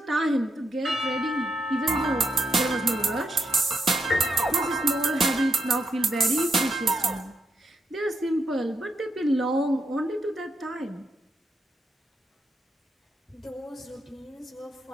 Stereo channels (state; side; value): normal; both; correlation 0.83